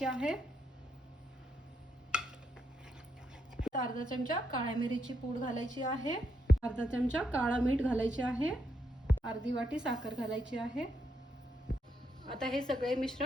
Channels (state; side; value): normal; both; correlation 0.78